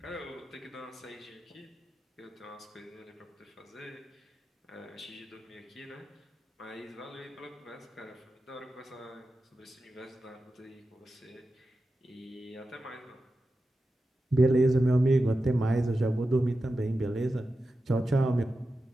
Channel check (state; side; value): normal; both; correlation 0.92